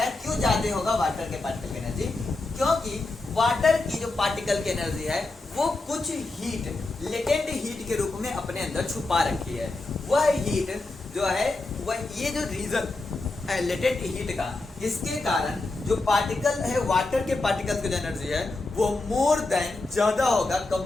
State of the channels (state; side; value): quieter; right; 3.2 dB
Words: क्यों ज्यादा होगा वाटर के पार्टिकल की एनर्जी? क्योंकि वाटर की जो पार्टिकल की एनर्जी है, वो कुछ हीट, लेटेंट हीट के रूप में अपने अंदर छुपा रखी है। वह हीट जो है, वह ये जो रीजन है लेटेंट हीट का, इसके कारण जो पार्टिकल है, वाटर के पार्टिकल की जो एनर्जी है, वो मोर देन ज्यादा होगा